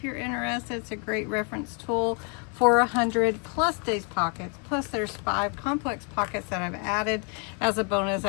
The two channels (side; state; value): right; quieter; 37.7 dB